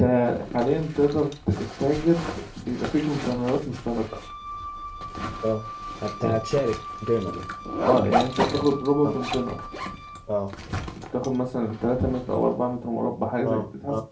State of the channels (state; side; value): identical; both; correlation 1.00